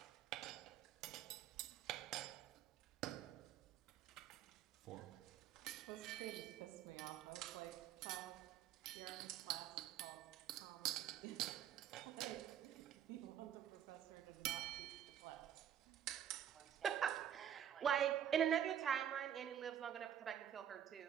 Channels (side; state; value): left; quieter; 9.9 dB